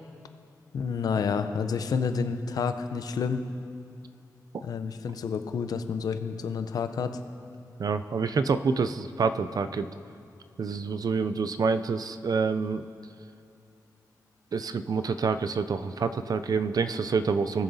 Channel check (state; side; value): normal; both; correlation 0.71